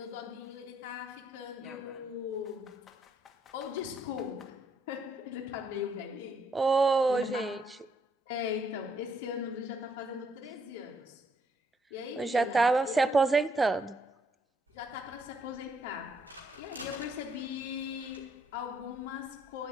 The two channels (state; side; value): normal; both; correlation 0.72